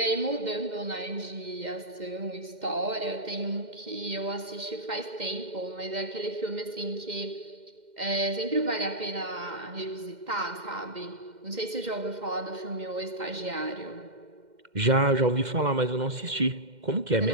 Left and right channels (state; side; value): late; left; 2.1 ms